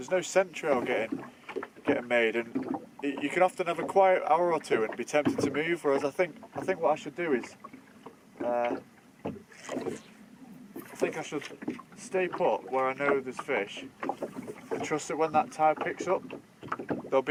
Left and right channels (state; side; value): identical; both; correlation 1.00